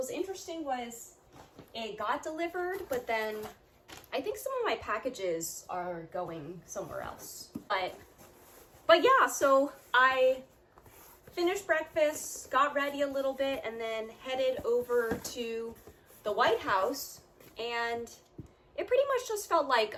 interesting was it got delivered, but then I think some of my packages are going somewhere else. But yeah, so I finished breakfast, got ready a little bit, and then headed over to the White House, and it pretty much just felt like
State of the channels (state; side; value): identical; both; correlation 1.00